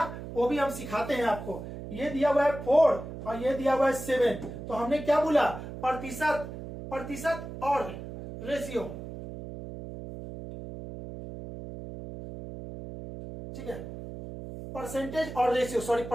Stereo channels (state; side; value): noise; right; hum, 10 dB below the sound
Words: वो भी हम सिखाते हैं आपको। ये दिया हुआ है 4 और ये दिया हुआ है 7, तो हमने क्या बोला? प्रतिशत और रेशियो, ठीक है, परसेंटेज और रेशियो, सॉरी